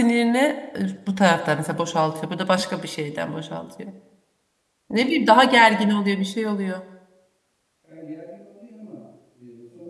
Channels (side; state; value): both; identical; correlation 1.00